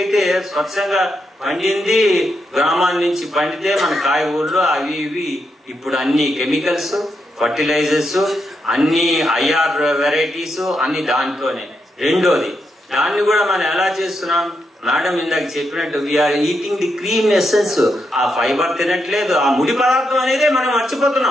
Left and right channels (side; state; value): both; normal; correlation 0.82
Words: స్వచ్ఛంగా పండింది గ్రామాల నుంచి పండితే మన కాయగూరలు అవి ఇవి. ఇప్పుడు అన్ని కెమికల్స్, ఫర్టిలైజర్స్, అన్ని ఐఆర్ వెరైటీస్ అన్ని దాంట్లోనే. రెండోది, దాన్ని కూడా మనం ఎలా చేస్తున్నాం? మేడం ఇందాక చెప్పినట్టు we are eating the cream essence. ఆ ఫైబర్ తినట్లేదు, ఆ ముడి పదార్థం అనేది మనం